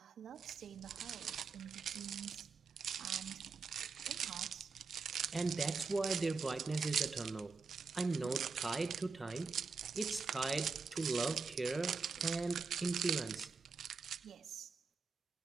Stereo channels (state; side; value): quieter; left; 4.6 dB